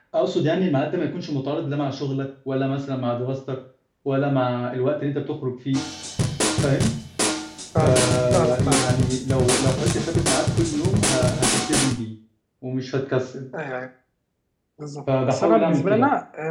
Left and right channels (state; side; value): identical; both; correlation 1.00